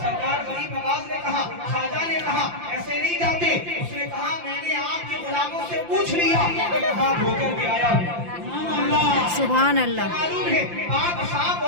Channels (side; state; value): left; late; 5.8 ms